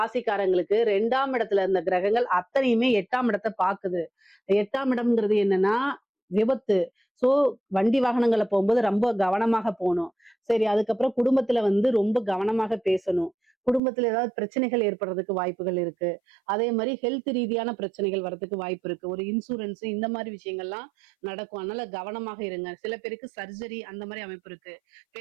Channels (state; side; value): drops out; left; at 13.8 s